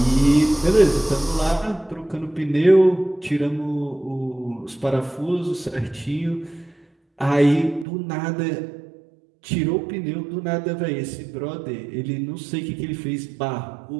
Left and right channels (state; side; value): drops out; left; at 7.9 s